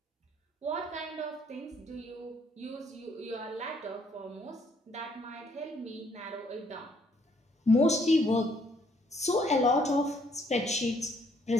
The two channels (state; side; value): normal; both; correlation 0.67